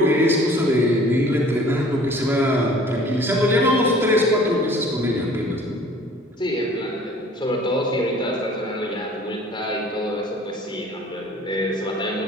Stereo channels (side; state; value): both; normal; correlation 0.51